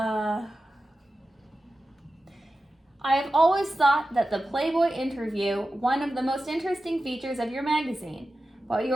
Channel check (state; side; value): normal; both; correlation 0.93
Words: I have always thought that the Playboy interview, one of the most interesting features of your magazine. While